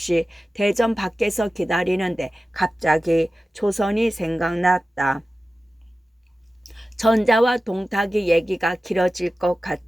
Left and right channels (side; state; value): both; normal; correlation 0.95